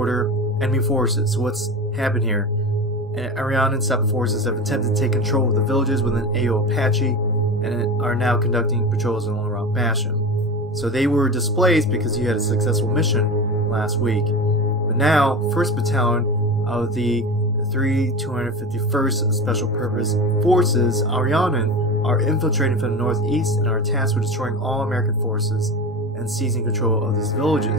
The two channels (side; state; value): both; normal; correlation 0.27